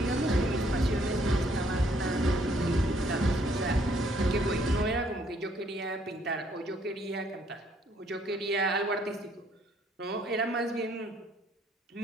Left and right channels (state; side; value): normal; both; correlation 0.66